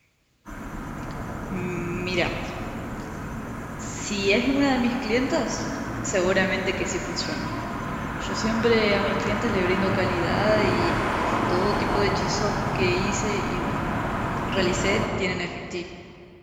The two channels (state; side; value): identical; both; correlation 1.00